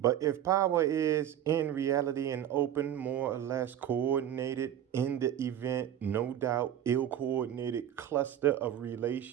But if power is in reality an open, more or less coordinated, in the event, no doubt, ill coordinated cluster of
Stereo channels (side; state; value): left; quieter; 10.8 dB